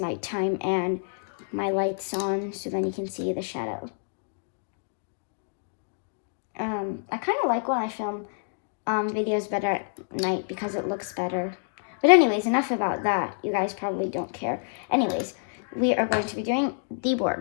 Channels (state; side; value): silent; right; digital silence